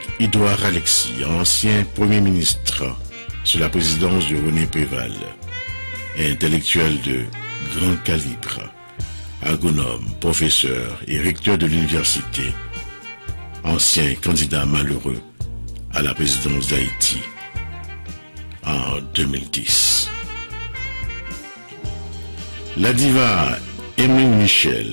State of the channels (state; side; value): inverted; both; correlation -1.00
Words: Alexis, ancien Premier ministre sous la présidence de René Préval, intellectuel de grand calibre, agronome, professeur et recteur de l'université, ancien candidat malheureux à la présidence d'Haïti en 2010. La diva Emeline